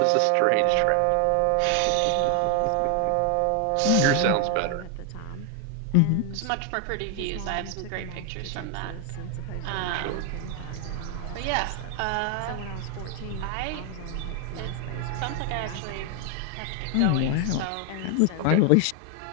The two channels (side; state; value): both; different; correlation 0.00